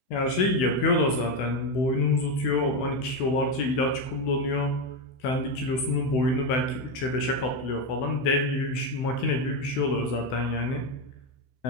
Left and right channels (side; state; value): right; late; 16 ms